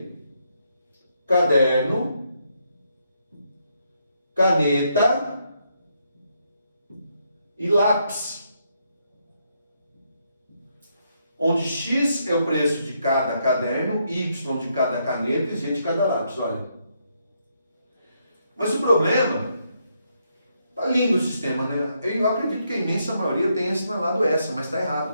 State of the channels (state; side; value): inverted; both; correlation -0.77